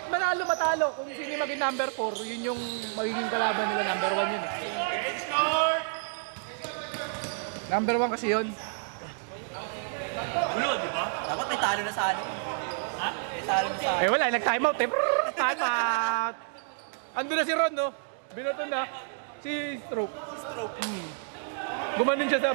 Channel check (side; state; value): left; silent; digital silence